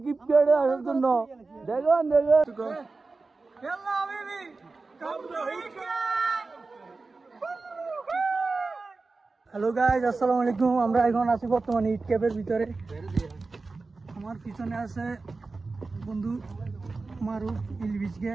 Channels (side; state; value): left; quieter; 3.8 dB